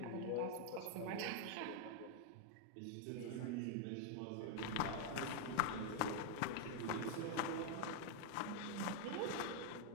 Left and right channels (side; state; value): both; different; correlation 0.00